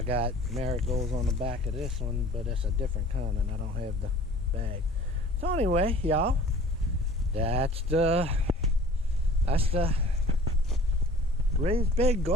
got marigolds on the back of this one, but it's a different kind and I don't have the bag. So anyway, y'all, that's the raised bed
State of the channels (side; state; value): both; normal; correlation 0.47